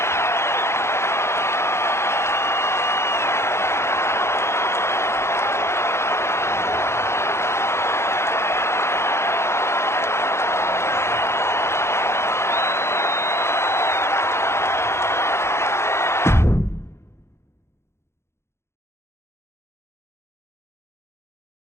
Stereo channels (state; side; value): late; right; 0.13 ms